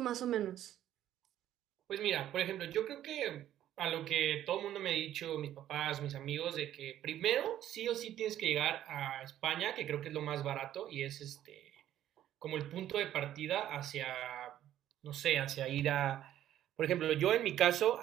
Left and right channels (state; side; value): quieter; left; 11.9 dB